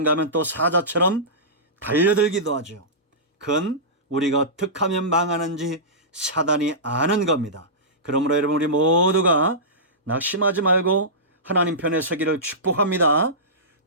하면 또 사자처럼 달려들기도 하죠. 그건 우리가 어떻게 하면 망하는지 사단이 아는 겁니다. 그러므로 여러분, 우리 모두가 낙심하지 말고 하나님 편에 서기를 축복합니다.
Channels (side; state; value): both; normal; correlation -0.19